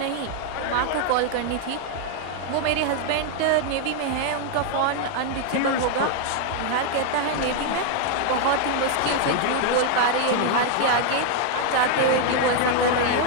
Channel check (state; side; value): different; both; correlation 0.00